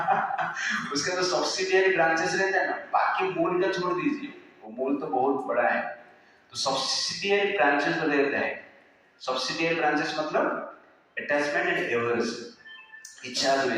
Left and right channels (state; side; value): identical; both; correlation 1.00